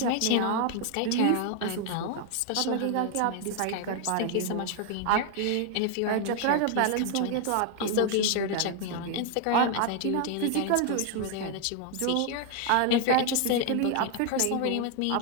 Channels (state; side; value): different; both; correlation 0.00